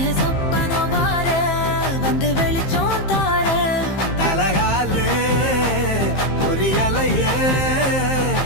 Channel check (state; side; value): late; right; 15 ms